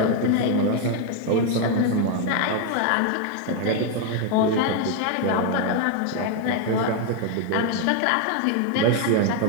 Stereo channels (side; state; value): both; different; correlation 0.01